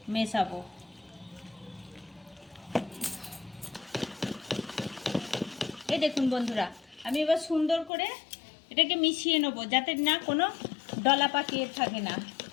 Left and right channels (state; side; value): drops out; right; at 7.9 s